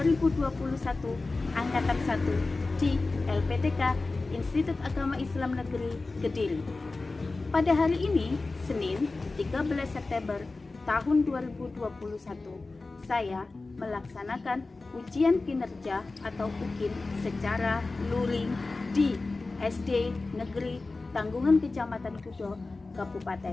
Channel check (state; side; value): quieter; right; 3.5 dB